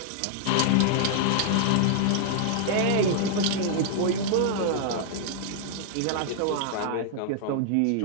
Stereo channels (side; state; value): both; different; correlation -0.01